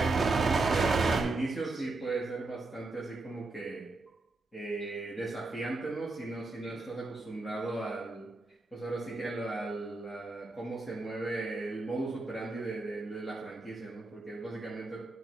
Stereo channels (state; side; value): quieter; left; 3.2 dB